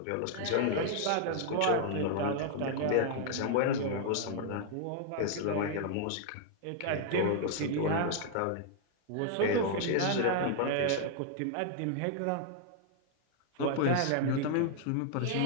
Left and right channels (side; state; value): both; different; correlation 0.00